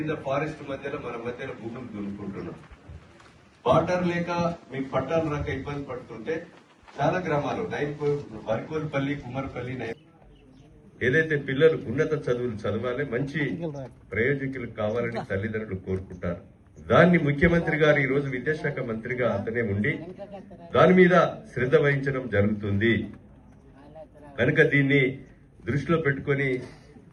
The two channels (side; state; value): both; identical; correlation 1.00